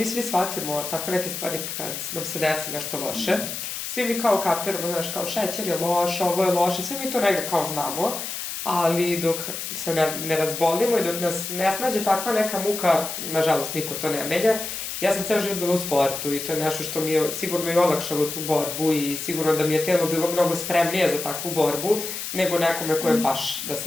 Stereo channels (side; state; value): left; noise; hiss, 6 dB below the sound